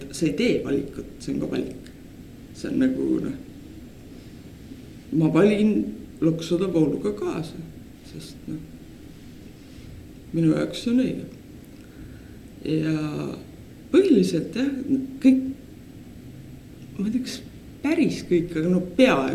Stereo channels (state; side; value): identical; both; correlation 1.00